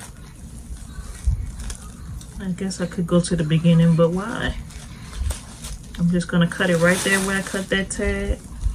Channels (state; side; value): identical; both; correlation 1.00